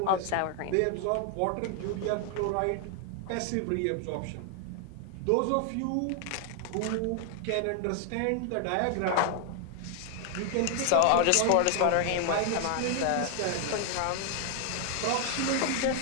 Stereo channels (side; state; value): both; different; correlation 0.00